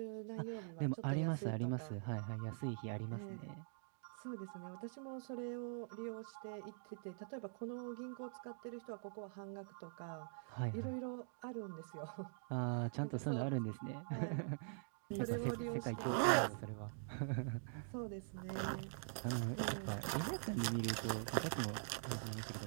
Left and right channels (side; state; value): left; silent; digital silence